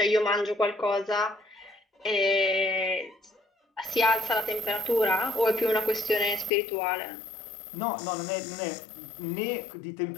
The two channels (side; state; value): right; drops out; at 6.5 s